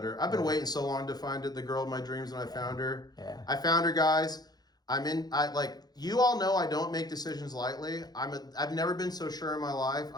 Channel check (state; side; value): late; right; 0.19 ms